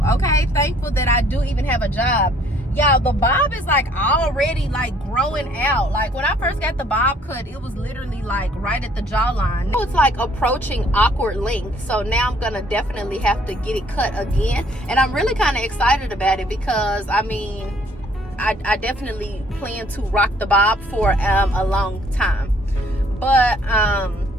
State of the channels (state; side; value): normal; both; correlation 0.61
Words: okay? Thankful that I do even have a job. Y'all, the bob is like already like growing out. Like, when I first got the bob cut, it was literally like right at the jawline. Now it's like approaching awkward length. So now I'm gonna definitely have to get it cut again. And I'm really kind of excited about it, because I mean, I definitely plan to rock the bob for a long time. But